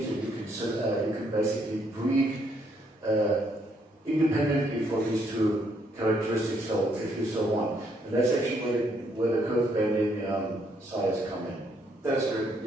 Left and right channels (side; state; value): both; normal; correlation 0.71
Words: that you can basically breed independently for these two characteristics, so if you so want. And that's actually where the curve bending size come in. That's true.